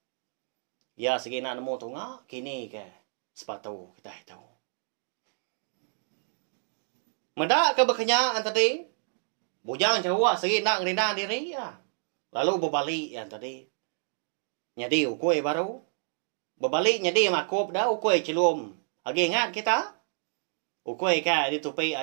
ya segina nemu tunga kini ke sepatu kita tahu medak ke bekenya tadi bujan cowok segina ngerina diri ya lalu berbalik yang tadi nyadi ukoi baru berbalik nyadi makop dah ukoi celum lagi ingat kita ukoi ka ditupai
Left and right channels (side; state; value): left; silent; digital silence